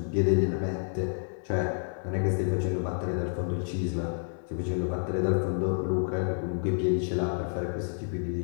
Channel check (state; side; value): silent; right; digital silence